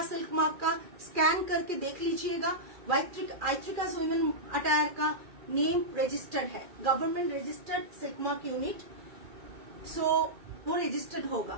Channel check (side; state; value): left; late; 2.4 ms